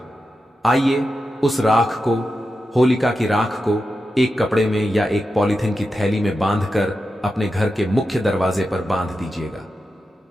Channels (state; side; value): normal; both; correlation 0.90